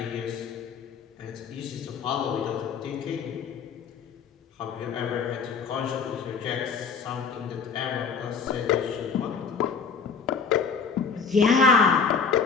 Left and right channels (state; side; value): quieter; right; 5.7 dB